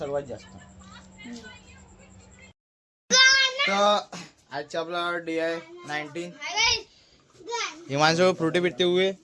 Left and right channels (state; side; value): identical; both; correlation 1.00